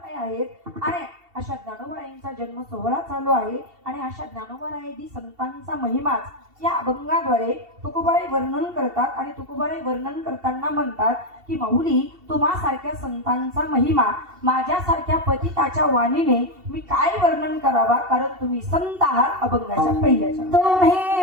आहेत. आणि अशा ज्ञानोबरायांचा जन्म सोहळा चालू आहे. आणि अशा ज्ञानोबरायादी संतांचा महिमाच या अभंगाद्वारे तुकोबाराय वर्णन करतात. आणि तुकोबाराय वर्णन करताना म्हणतात की माऊली, तुम्हासारख्या संतांचा महिमा माझ्यासारख्या पतिताच्या वाणीने मी काय वर्णन करावा, कारण तुम्ही संत आहात. अभंगाच्या पहिल्याच्या तुम्ही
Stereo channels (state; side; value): late; left; 2.7 ms